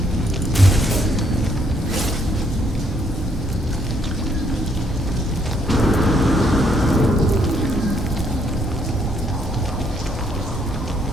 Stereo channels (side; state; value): both; normal; correlation 0.70